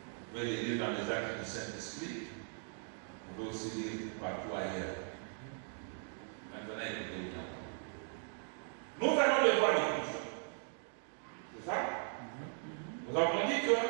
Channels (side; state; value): left; silent; 52 dB below the other